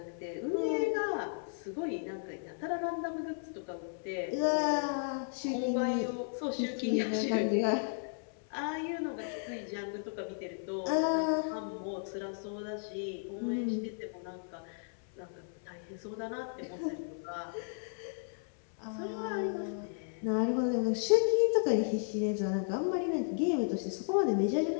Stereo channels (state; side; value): silent; right; 55 dB below the other